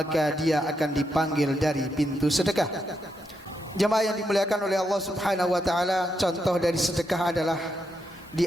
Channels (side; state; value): both; normal; correlation 0.82